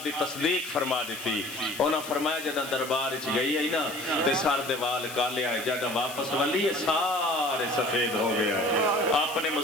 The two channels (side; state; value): left; noise; hiss, 12 dB below the sound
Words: دی تصدیق فرما دیتی انہاں فرمایا جدہ دربار اچھ گئی ہے نا تے سار دیوال کالے آئے جدہ واپس والی ہے سارے سفید ہو گیا ہے اپنے